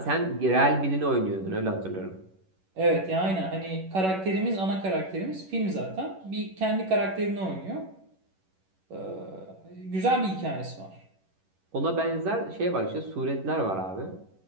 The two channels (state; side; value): late; left; 11 ms